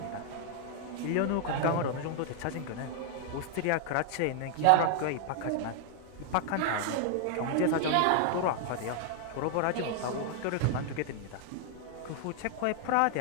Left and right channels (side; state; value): both; different; correlation 0.00